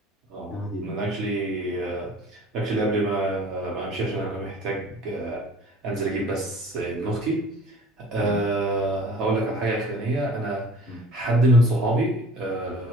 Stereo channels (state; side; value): normal; both; correlation 0.47